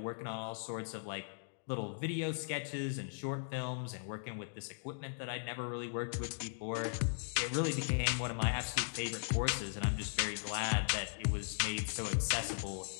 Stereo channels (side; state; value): right; silent; digital silence